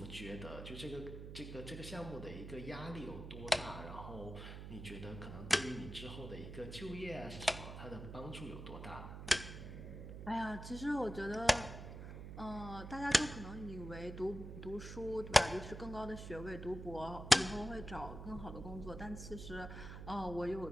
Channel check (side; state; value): right; noise; hum, 9 dB below the sound